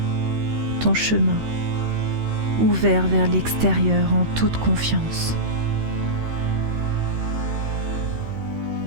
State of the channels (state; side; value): late; left; 13 ms